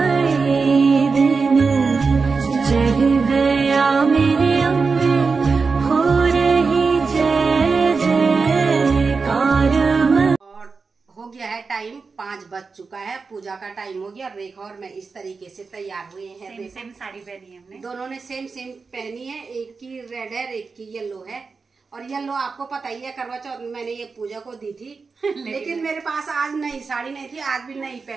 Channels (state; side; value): quieter; left; 4.7 dB